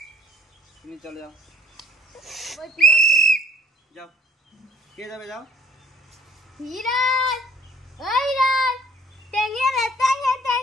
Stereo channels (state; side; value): normal; both; correlation 0.61